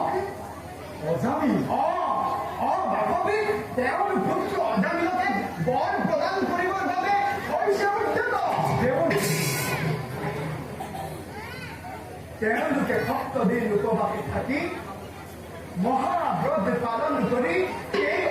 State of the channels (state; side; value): identical; both; correlation 1.00